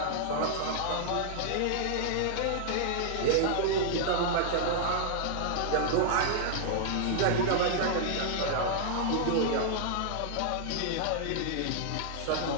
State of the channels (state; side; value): different; both; correlation -0.01